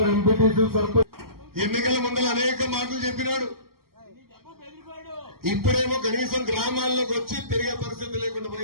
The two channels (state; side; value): late; left; 0.94 ms